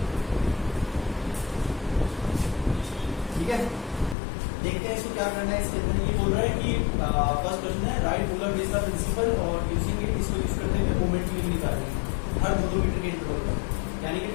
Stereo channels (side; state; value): right; drops out; at 4.2 s